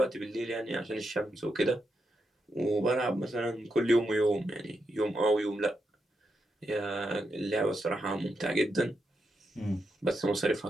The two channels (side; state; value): both; normal; correlation 0.83